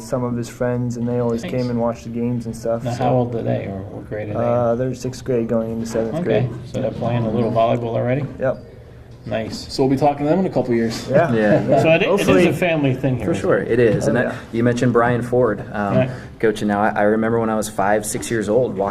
some of his friends, and they always came and watched the games and stuff. Now, how old are they, or what grade are they? They're 6th grade going into 7th grade. So they're playing a little volleyball already? Yep. Nice. So we'll be talking to them in a couple years. So it is a family thing here. For sure, it is. You mentioned Brian Ford, coaching now. I remember when I was 5, 6 years old,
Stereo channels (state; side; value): identical; both; correlation 1.00